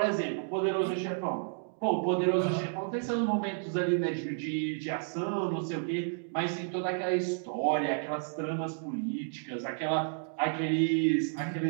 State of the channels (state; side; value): silent; left; digital silence